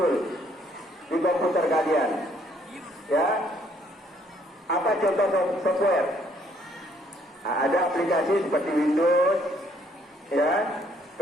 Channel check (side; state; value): both; normal; correlation 0.66